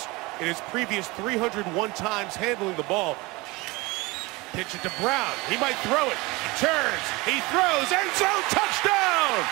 in his previous 301 times handling the ball. Pitch it to Brown. He might throw it. He turns. He throws. End zone touchdown!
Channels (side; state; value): left; quieter; 23.5 dB